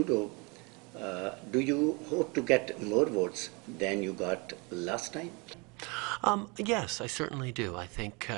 do you hope to get more votes than you got last time? Yes, I certainly do. I think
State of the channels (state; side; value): quieter; left; 29.4 dB